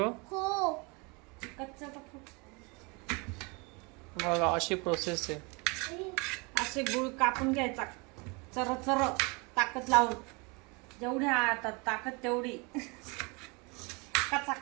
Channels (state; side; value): quieter; left; 29.5 dB